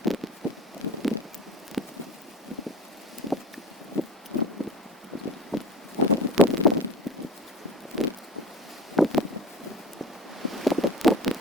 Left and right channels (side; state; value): both; normal; correlation 0.36